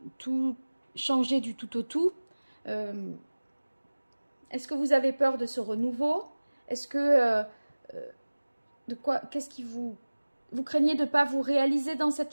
tout changer du tout au tout. Est-ce que vous avez peur de ce renouveau? Est-ce que qu'est-ce qui vous craignez de ne pas vous réaliser dans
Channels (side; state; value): both; inverted; correlation -1.00